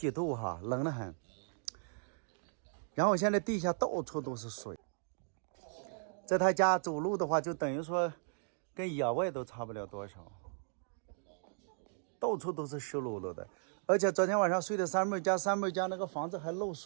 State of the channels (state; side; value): silent; left; digital silence